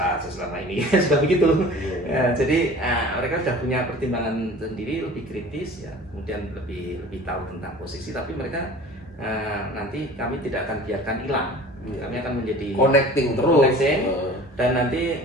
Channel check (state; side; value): normal; both; correlation 0.43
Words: selama ini sudah begitu. Jadi mereka sudah punya pertimbangan sendiri, lebih kritis ya, kemudian lebih tahu tentang posisi. Tapi mereka nanti kami tidak akan biarkan hilang. Kami akan menjadi connecting terus. Dan nanti